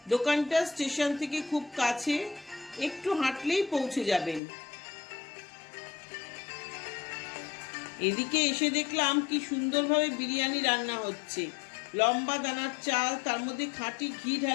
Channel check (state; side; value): drops out; right; at 4.4 s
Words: দোকানটা স্টেশন থেকে খুব কাছে, একটু হাঁটলেই পৌঁছে যাবেন। এদিকে এসে দেখলাম কি সুন্দরভাবে বিরিয়ানি রান্না হচ্ছে। লম্বা দানার চাল, তার মধ্যে খাঁটি ঘি